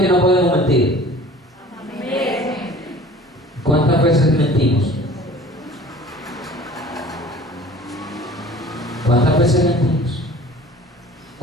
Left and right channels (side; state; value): both; normal; correlation 0.46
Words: que no podemos mentir? ¿Cuántas veces mentimos? ¿Cuántas veces mentimos?